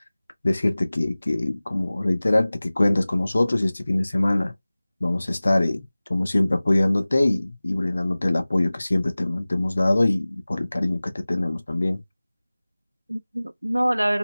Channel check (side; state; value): both; inverted; correlation -0.99